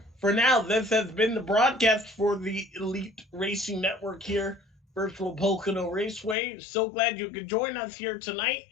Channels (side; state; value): right; drops out; at 6.4 s